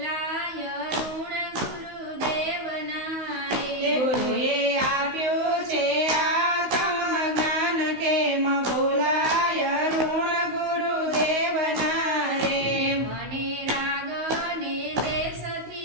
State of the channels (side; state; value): left; late; 16 ms